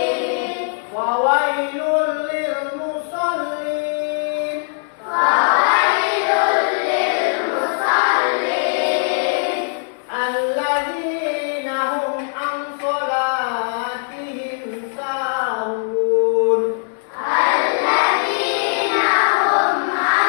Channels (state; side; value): silent; right; digital silence